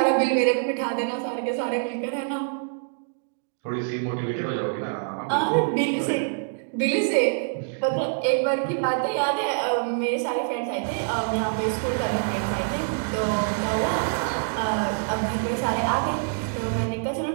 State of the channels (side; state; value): left; silent; digital silence